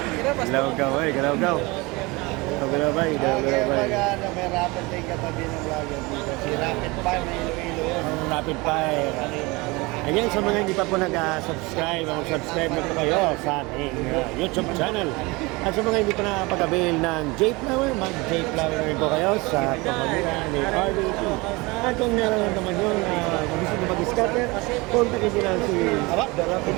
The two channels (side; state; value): left; quieter; 24.4 dB